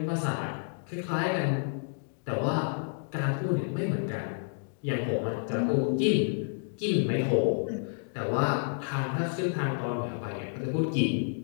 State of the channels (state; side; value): silent; right; digital silence